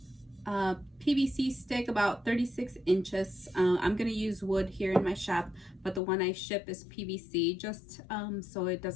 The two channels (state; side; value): drops out; right; at 6.0 s